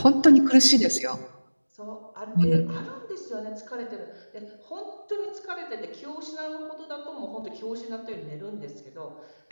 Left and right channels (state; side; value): inverted; both; correlation -1.00